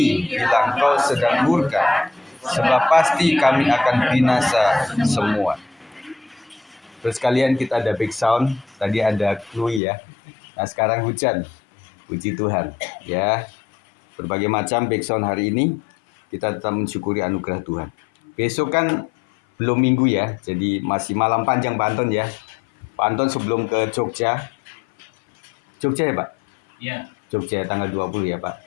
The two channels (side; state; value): right; drops out; at 9.8 s